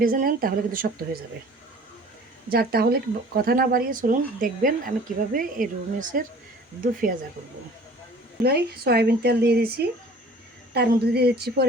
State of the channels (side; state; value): both; normal; correlation 0.48